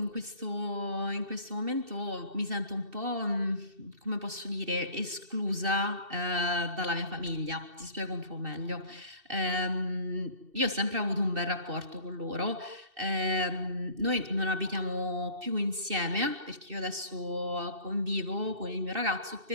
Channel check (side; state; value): left; late; 2.7 ms